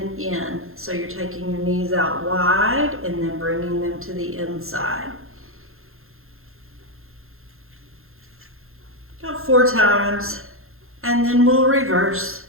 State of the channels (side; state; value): left; late; 0.61 ms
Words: in. So you're taking your knees out wide and then bringing them to the inside. About 4 times, and then we'll reverse.